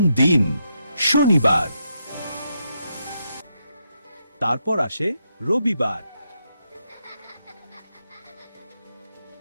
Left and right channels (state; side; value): inverted; both; correlation -0.81